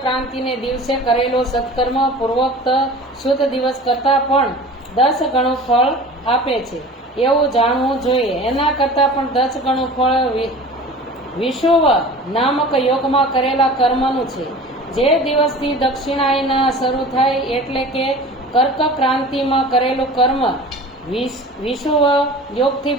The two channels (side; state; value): both; normal; correlation 0.40